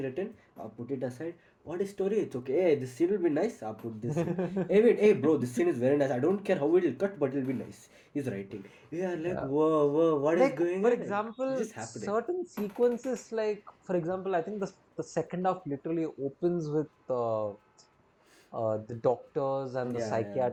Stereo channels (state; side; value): identical; both; correlation 1.00